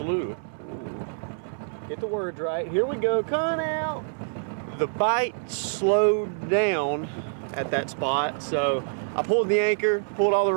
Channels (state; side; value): silent; left; 61 dB below the other